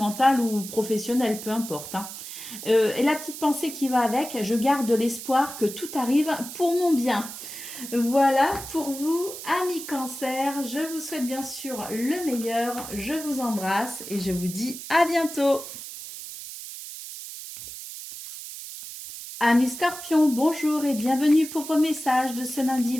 ou professionnel, peu importe. Hein. Et la petite pensée qui va avec, je garde l'espoir que tout arrive pour mon bien. Voilà pour vous, amis Cancer. Je vous souhaite bien sûr le meilleur. Je vous embrasse et je vous dis à bientôt. Amis Scorpions, bonjour et bienvenue pour vos messages de ce lundi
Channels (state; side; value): noise; right; hiss, 11 dB below the sound